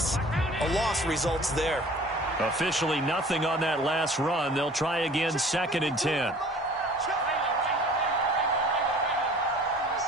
A loss results there. Officially nothing on that last run. They'll try again, 2nd and 10.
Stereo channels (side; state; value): both; normal; correlation 0.48